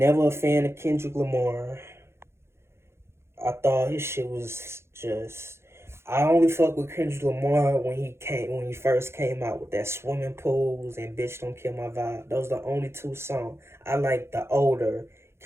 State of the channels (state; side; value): late; left; 0.12 ms